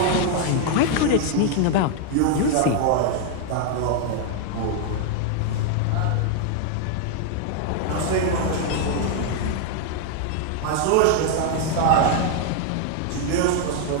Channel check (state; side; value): different; both; correlation 0.00